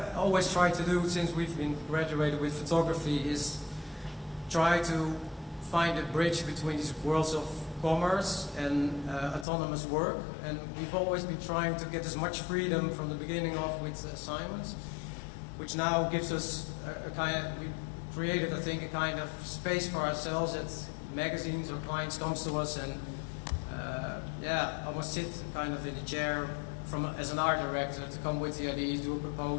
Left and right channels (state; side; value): drops out; right; at 9.5 s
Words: always try to do since we've been graduated with photography is try to find a bridge between these worlds of commerce and autonomous work. And we've always been trying to get as much freedom from the beginning of with assignments, which now gives us we created, I think, a kind of space for ourselves that magazines or clients comes to us and almost sit kind of in a chair as an art director to come with the ideas, do a